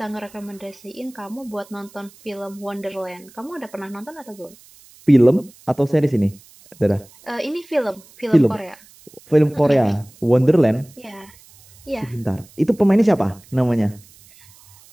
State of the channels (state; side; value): noise; right; hiss, 25 dB below the sound